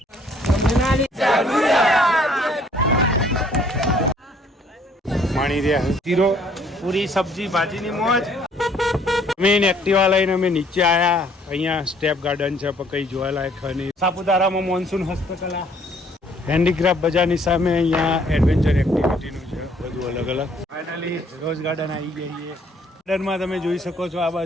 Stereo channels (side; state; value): both; normal; correlation 0.62